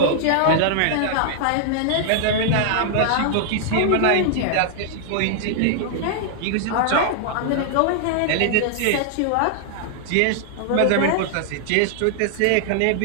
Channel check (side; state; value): both; different; correlation -0.01